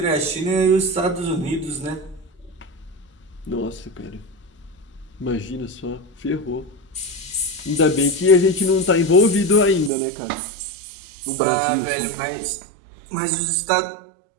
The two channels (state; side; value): drops out; left; at 9.9 s